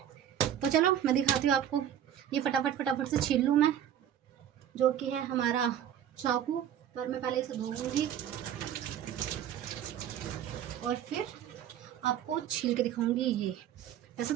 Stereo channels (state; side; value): quieter; left; 10.2 dB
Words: तो चलो मैं दिखाती हूँ आपको। ये फटाफट फटाफट से छील लूँ मैं, जो कि है हमारा चाकू। पर मैं पहले इसे धोऊंगी और फिर आपको छील के दिखाऊंगी। ये वैसे